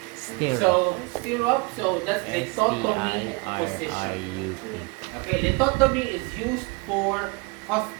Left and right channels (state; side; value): quieter; left; 28.5 dB